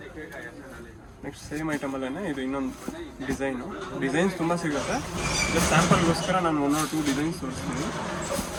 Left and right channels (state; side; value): identical; both; correlation 1.00